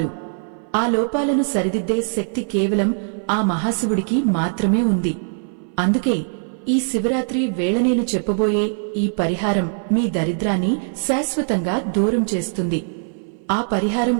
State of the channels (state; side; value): silent; left; 59 dB below the other